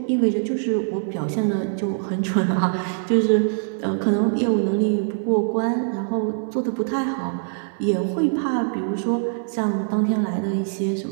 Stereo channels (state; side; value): silent; left; 63 dB below the other